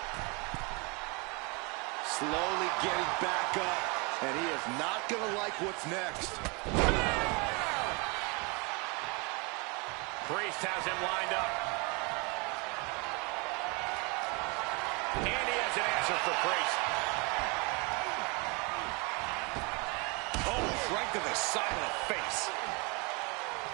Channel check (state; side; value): quieter; left; 30.2 dB